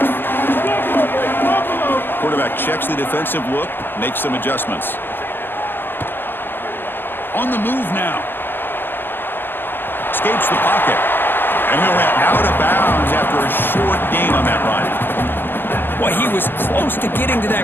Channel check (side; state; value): right; late; 0.097 ms